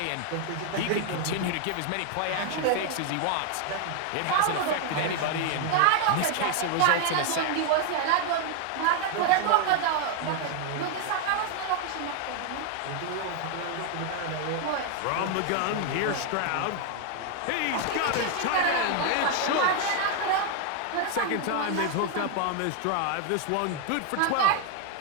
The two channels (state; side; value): different; both; correlation 0.00